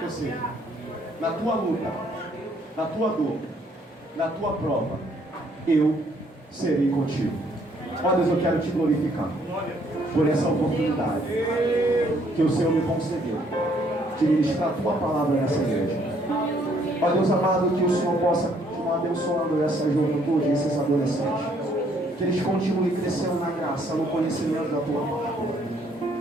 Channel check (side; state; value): both; normal; correlation 0.66